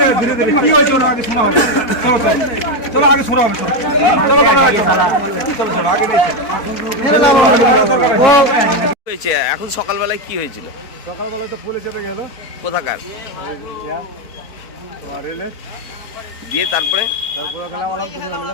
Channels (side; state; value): right; late; 4.1 ms